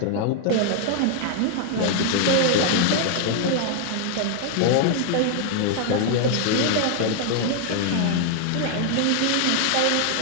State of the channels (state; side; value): different; both; correlation 0.00